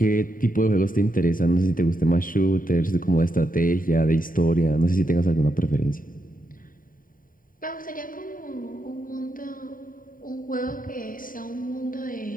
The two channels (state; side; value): late; right; 0.40 ms